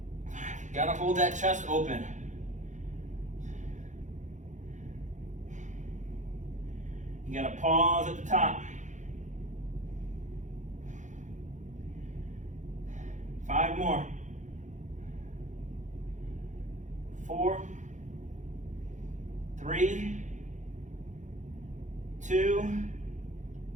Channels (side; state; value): left; late; 0.35 ms